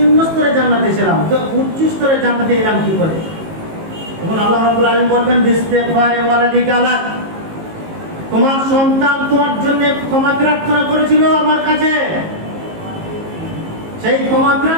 স্তরে জান্নাতে ছিলাম, তো উচ্চ স্তরে জান্নাতে এলাম কি করে? তখন আল্লাহ রাব্বুল আলামিন বলবেন, বিস্তিগফারি ওয়ালাদিকা লাক, তোমার সন্তান তোমার জন্য ক্ষমা প্রার্থনা করেছিল আমার কাছে, সেই ক্ষমা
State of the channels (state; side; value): late; left; 18 ms